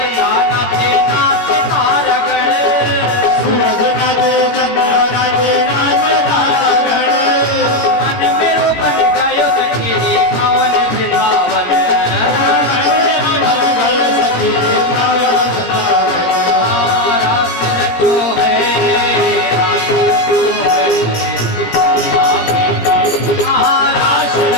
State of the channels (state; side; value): late; right; 17 ms